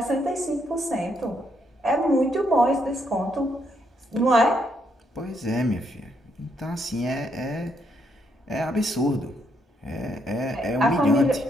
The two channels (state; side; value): normal; both; correlation 0.75